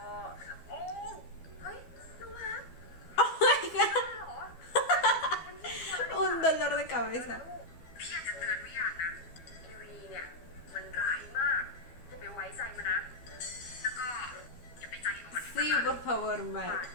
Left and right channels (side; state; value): right; late; 12 ms